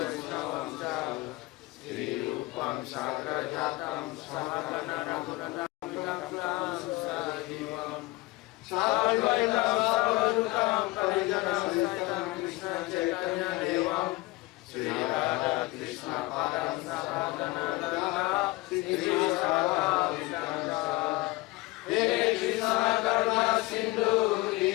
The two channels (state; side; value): quieter; right; 21.4 dB